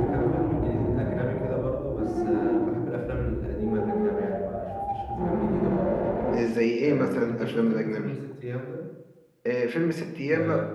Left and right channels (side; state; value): both; identical; correlation 1.00